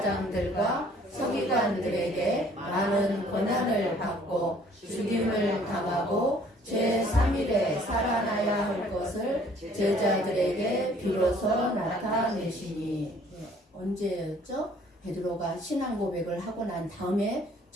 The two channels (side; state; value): both; normal; correlation 0.58